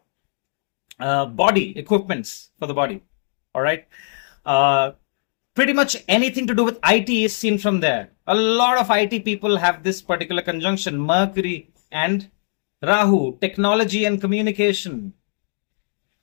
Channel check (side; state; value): right; silent; digital silence